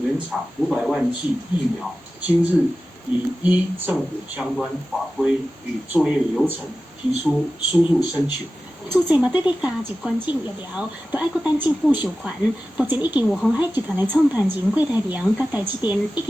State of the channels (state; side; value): normal; both; correlation 0.95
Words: 原厂500万剂疫苗，今日已依政府相关法规与作业流程提出输入申请。主治嘛对要加入捐赠疫苗，就爱搁等政府授权。目前已经有鸿海集团的创办人郭台铭甲台积电已